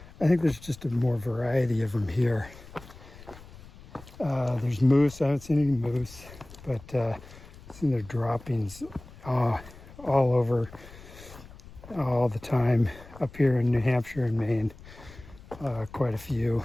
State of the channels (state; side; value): noise; left; rumble, 19 dB below the sound